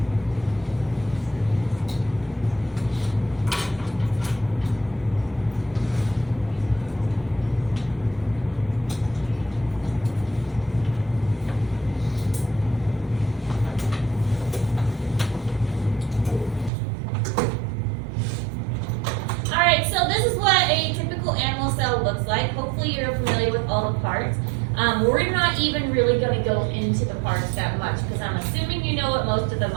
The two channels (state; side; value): drops out; left; at 16.7 s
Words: Hopefully you're familiar with all the parts. We're not even really going to go into the parts that much because I'm assuming you know what most of them